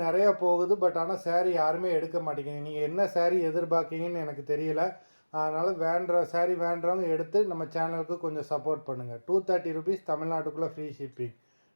நிறையா போகுது, பட் ஆனால் சாரீ யாருமே எடுக்க மாட்டேங்குது. நீங்கள் என்ன சாரீ எதிர்பார்க்கீங்கன்னு எனக்கு தெரியல. அதனால் சாரீ வேண்டுறவங்க எடுத்து நம்ம சேனலுக்கு கொஞ்சம் சப்போர்ட் பண்ணுங்கள். 230 ருபீஸ், தமிழ்நாட்டுக்குள்ளே free shipping.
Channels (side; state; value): both; inverted; correlation -1.00